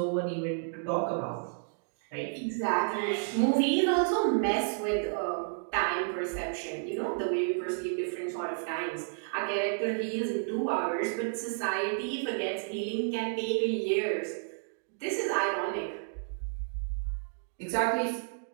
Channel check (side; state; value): left; silent; digital silence